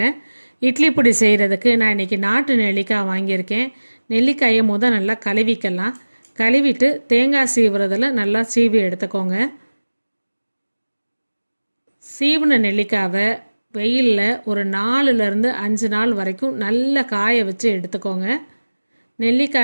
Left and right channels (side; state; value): both; inverted; correlation -1.00